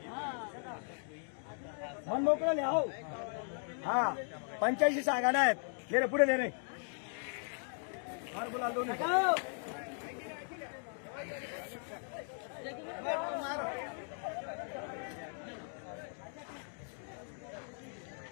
मन मोकळं लिहा हो हा 85 सांगा नाहीत ले रे पुढे ले रे मार गुलाल दोन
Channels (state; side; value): silent; right; 53 dB below the other